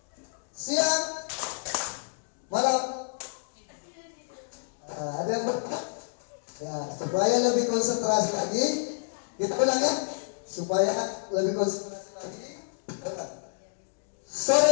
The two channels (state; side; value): silent; right; digital silence